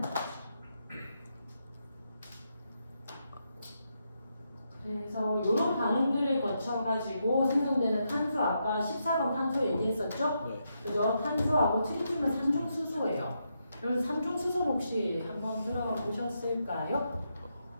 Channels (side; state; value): both; inverted; correlation -0.82